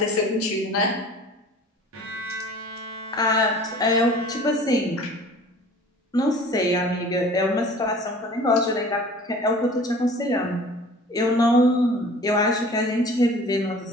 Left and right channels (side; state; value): both; normal; correlation 0.45